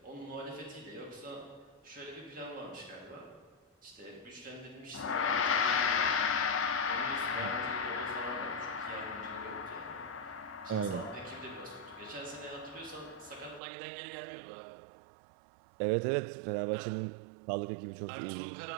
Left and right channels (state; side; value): drops out; left; at 13.6 s